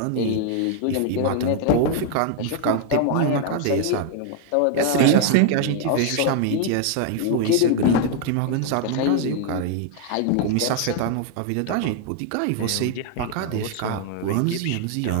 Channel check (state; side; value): different; both; correlation 0.00